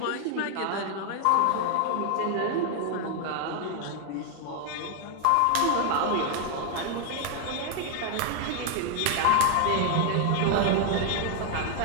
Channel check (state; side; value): different; both; correlation 0.00